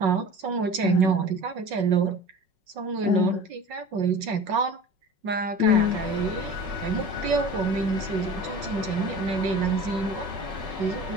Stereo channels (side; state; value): left; late; 5.4 ms